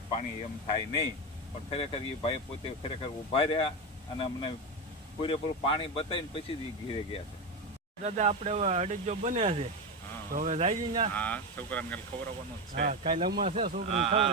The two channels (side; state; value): both; normal; correlation 0.15